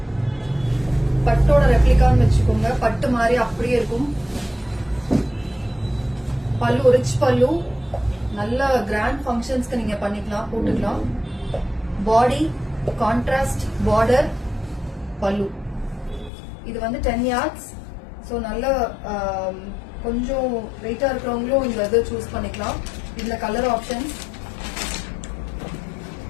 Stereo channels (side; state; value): right; drops out; at 16.3 s